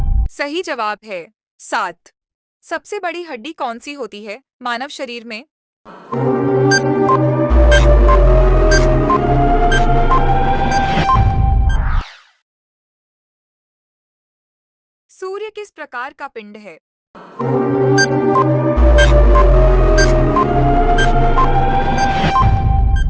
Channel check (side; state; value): both; identical; correlation 1.00